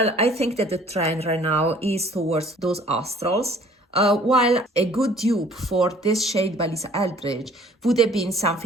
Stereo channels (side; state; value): both; normal; correlation 0.55